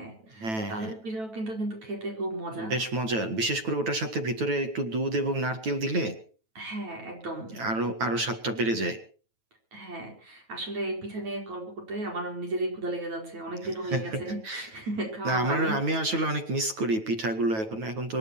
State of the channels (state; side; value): late; left; 9.1 ms